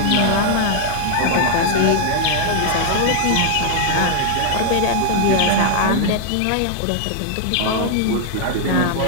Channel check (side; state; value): both; different; correlation 0.00